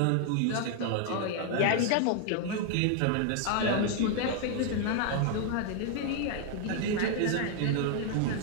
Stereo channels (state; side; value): different; both; correlation 0.00